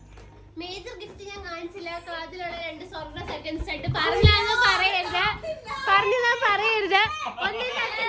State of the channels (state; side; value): identical; both; correlation 1.00